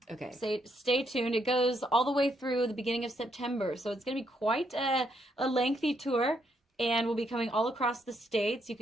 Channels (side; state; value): both; normal; correlation 0.75